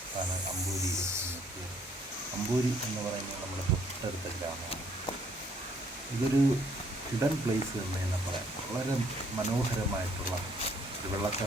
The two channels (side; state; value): both; normal; correlation 0.65